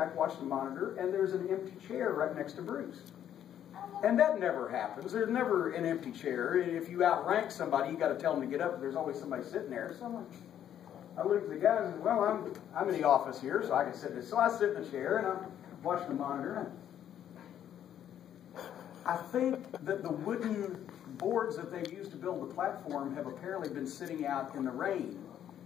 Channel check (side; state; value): right; quieter; 10.3 dB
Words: watching the monitor, and there's an empty chair right next to Bruce. And that never happens. There's never an empty chair. If you outrank somebody, you got to tell them to get up, but there's always somebody sitting there. So I look at the guys and say, well, I'm in the office here, so I can sit there. So I sit in the chair, and I'm watching the monitor. I think that the wooden boards that they've used to build the platform have apparently been sitting out in the rain,